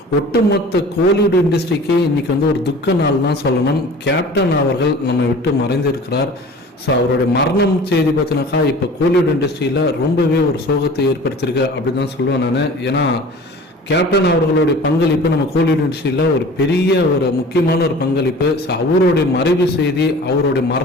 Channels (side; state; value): both; normal; correlation 0.43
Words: ஒட்டுமொத்த கோலிவுட் இண்டஸ்ட்ரிக்கு இன்னைக்கு வந்து ஒரு துக்க நாள் தான் சொல்லணும். கேப்டன் அவர்கள் நம்மை விட்டு மறைந்திருக்கிறார். ஸோ அவருடைய மரணம் செய்தி பார்த்தினாக்கா இப்போ கோலிவுட் இண்டஸ்ட்ரியில் ரொம்பவே ஒரு சோகத்தை ஏற்படுத்தியிருக்கு அப்படின்னு தான் சொல்லுவேன் நான். ஏன்னா கேப்டன் அவர்களுடைய பங்களிப்பு நம்ம கோலிவுட் இண்டஸ்ட்ரியில் ஒரு பெரிய ஒரு முக்கியமான ஒரு பங்களிப்பு. ஸோ அவருடைய மறைவு செய்தி, அவருடைய